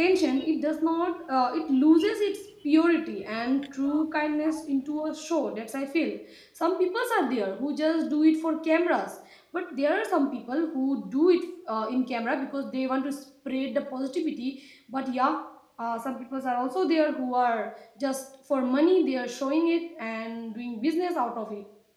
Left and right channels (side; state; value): both; identical; correlation 1.00